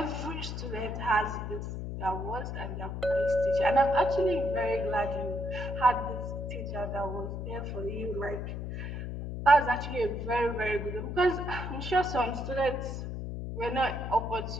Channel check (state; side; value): noise; left; hum, 5 dB below the sound